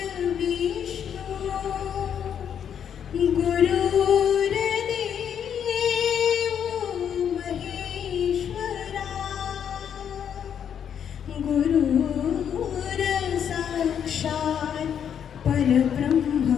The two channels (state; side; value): quieter; right; 8.5 dB